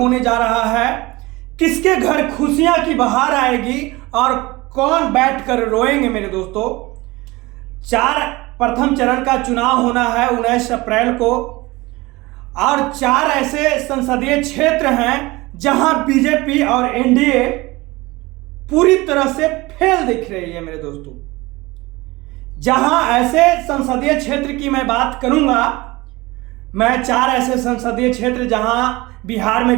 जा रहा है। किसके घर खुशियां की बहार आएगी और कौन बैठकर रोएंगे मेरे दोस्तों। प्रथम चरण का चुनाव होना है 19 अप्रैल को और 4 ऐसे संसदीय क्षेत्र हैं जहां बीजेपी और एनडीए पूरी तरह से फेल दिख रही है मेरे दोस्तों। जहां ऐसे संसदीय क्षेत्र की मैं बात करूंगा, मैं 4 ऐसे संसदीय क्षेत्र जहां बिहार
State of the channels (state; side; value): quieter; left; 21.6 dB